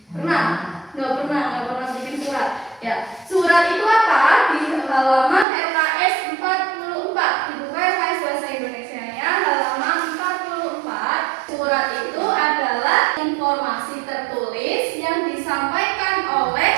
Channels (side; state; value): left; drops out; at 5.5 s